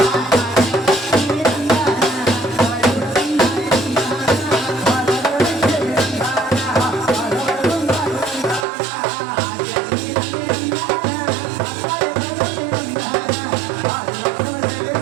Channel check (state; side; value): drops out; left; at 8.7 s